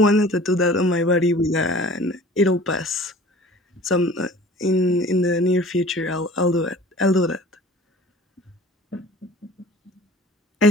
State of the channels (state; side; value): normal; both; correlation 0.45